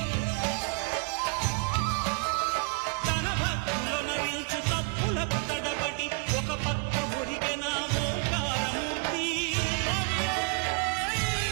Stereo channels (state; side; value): quieter; left; 34.5 dB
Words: తన భక్తులనరించు తప్పులకు తడబడి ఒక పక్క ఒరిగెన ఓంకారమూర్తి